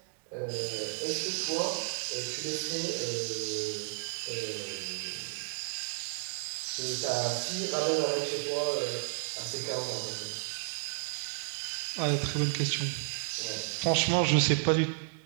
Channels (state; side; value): silent; left; 56 dB below the other